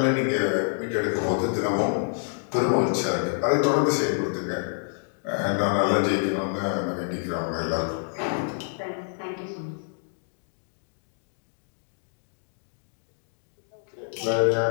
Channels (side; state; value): right; silent; 60 dB below the other